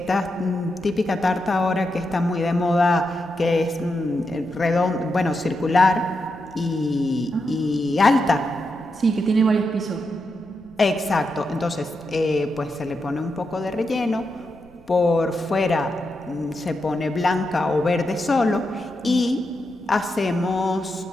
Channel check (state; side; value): noise; right; rumble, 27 dB below the sound